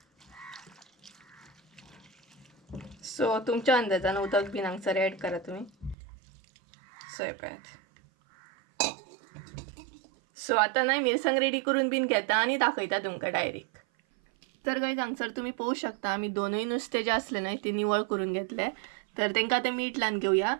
सो तुमच्या अंदाजान उदक बीन हांगसर एड करा तुम्ही. सो पळयात. सो आता न्हय मिरसांग रेडी करून बीन घेता आणि दाखयता तुमकां डायरेक्ट. तर गाईज हांगसर तुम्ही पळोवं शकता आमी दोनूय नुस्तें जे असले न्हय ते निवळ करून घेतले. तर तेंकां आतां मीठ लावन घेवया.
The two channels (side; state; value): left; drops out; at 6.0 s